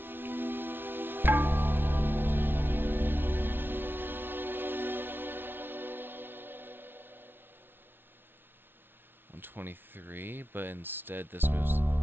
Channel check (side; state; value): left; late; 0.10 ms